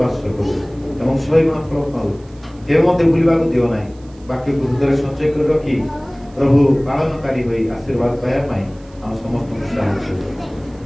ବାସ କରୁ ଏବଂ 100 ଗୁଣ ଫଳ ପାଉ। କେବେ ମଧ୍ୟ ଭୁଲିବାକୁ ଦିଅ ନାହିଁ। ବାକ୍ୟକୁ ହୃଦୟରେ ସଞ୍ଚୟ କରି ରଖି ପ୍ରଭୁ ପାଳନକାରୀ ହୋଇ ଆଶୀର୍ବାଦ ପାଇବା ପାଇଁ ଆମ ସମସ୍ତଙ୍କୁ ସାହାଯ୍ୟ କର।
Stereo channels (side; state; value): right; noise; hiss, 30 dB below the sound